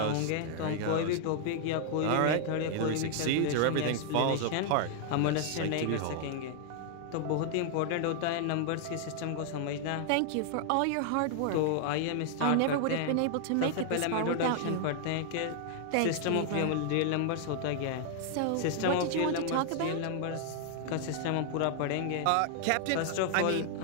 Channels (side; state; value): both; different; correlation 0.00